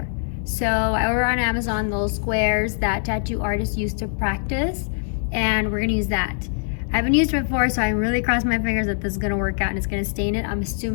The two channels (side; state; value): right; silent; 63 dB below the other